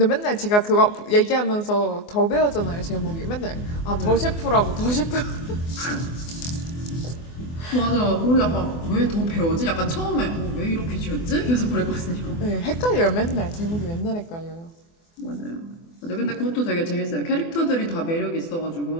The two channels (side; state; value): right; late; 24 ms